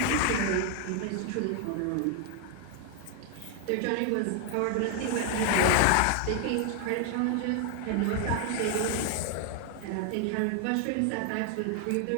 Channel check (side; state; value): both; different; correlation 0.00